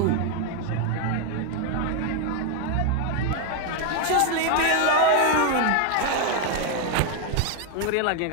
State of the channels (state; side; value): different; both; correlation 0.01